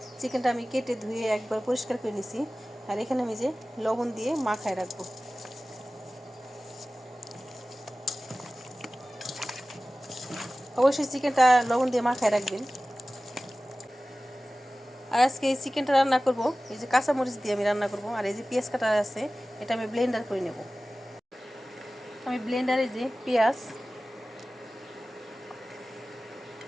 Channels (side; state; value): both; normal; correlation 0.97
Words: চিকেনটা আমি কেটে ধুয়ে একবার পরিষ্কার করে নিছি, আর এখানে আমি যে লবণ দিয়ে মাখায় রাখবো। অবশ্যই চিকেনটা লবণ দিয়ে মাখায় রাখবেন। আর আজকে এই চিকেনটা রান্না করব এই যে কাঁচামরিচ দিয়ে আমি রান্না করব। আর এই যে পেঁয়াজ কাটা আছে, এটা আমি ব্লেন্ডার করে নেব। আমি ব্লেন্ডারে যে পেঁয়াজ